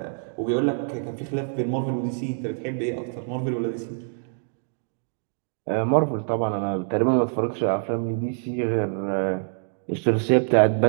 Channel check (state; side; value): silent; left; digital silence